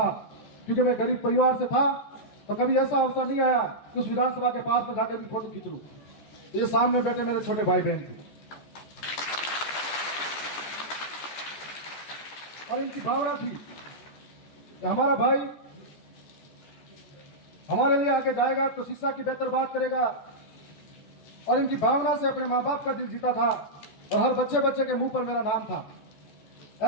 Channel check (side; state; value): right; late; 14 ms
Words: क्योंकि मैं गरीब परिवार से था, तो कभी ऐसा अवसर नहीं आया कि उस विधानसभा के पास में जाकर भी फोटो खींच लूं। ये सामने बैठे मेरे छोटे भाई बहन थे और इनकी भावना थी कि हमारा भाई हमारे लिए आगे जाएगा तो शिक्षा की बेहतर बात करेगा, और इनकी भावना से अपने मां बाप का दिल जीता था और हर बच्चे बच्चे के मुंह पर मेरा नाम था।